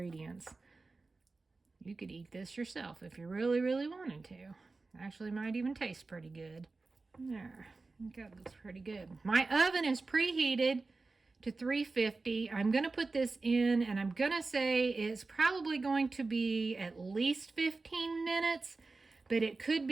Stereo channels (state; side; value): quieter; left; 3.7 dB